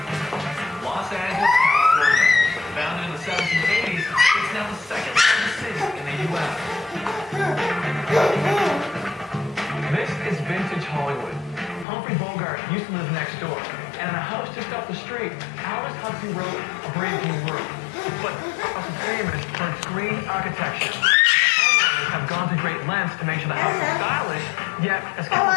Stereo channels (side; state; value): right; drops out; at 11.9 s